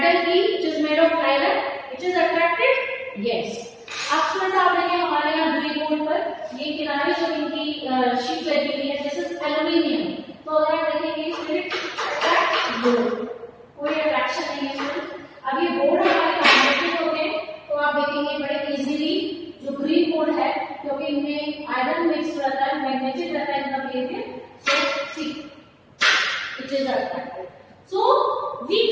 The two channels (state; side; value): identical; both; correlation 1.00